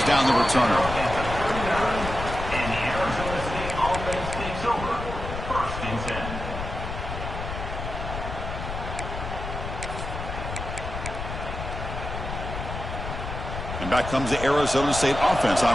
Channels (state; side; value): noise; left; rumble, 6 dB below the sound